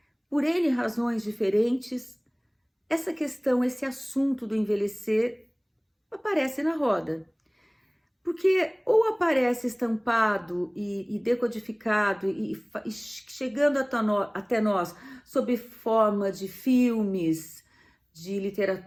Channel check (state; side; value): identical; both; correlation 1.00